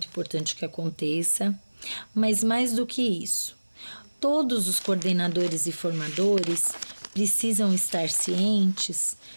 importante que aconteça. Mas mais do que isso, todos os coordenadores e formadores precisam estar cientes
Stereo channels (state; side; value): inverted; both; correlation -1.00